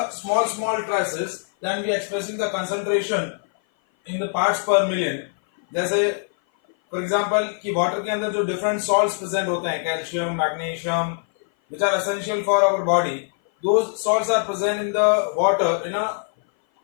small traces. Then we are expressing the concentration in the parts per million. जैसे for example कि वाटर के अंदर जो different salts present होते हैं, calcium, magnesium, which are essential for our body, those salts are present in the water in a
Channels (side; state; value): right; silent; 57 dB below the other